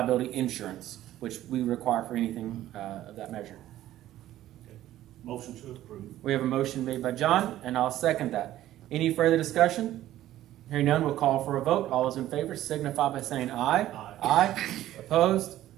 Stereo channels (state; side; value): quieter; left; 13.7 dB